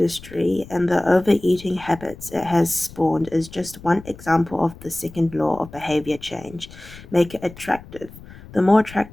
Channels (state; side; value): noise; left; rumble, 18 dB below the sound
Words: and the overeating habits it has spawned is just one example of the second law of behavior change. Make it attractive. The more